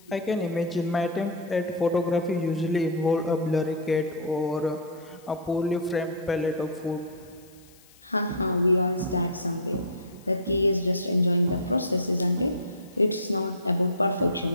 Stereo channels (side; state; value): left; noise; hiss, 27 dB below the sound